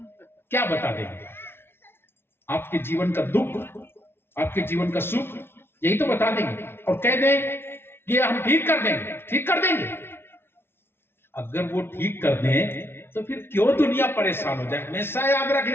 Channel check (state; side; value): late; right; 0.11 ms